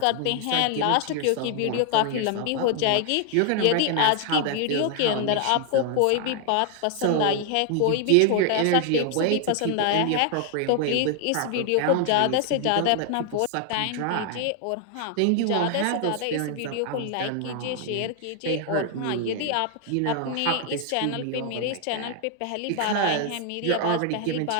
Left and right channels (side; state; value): both; different; correlation 0.00